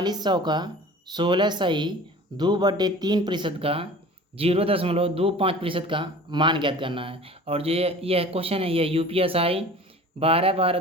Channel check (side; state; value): both; normal; correlation 0.42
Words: का 16 सही 2/3% का 0.25% का मान ज्ञात करना है। और जो यह क्वेश्चन है यह UPSI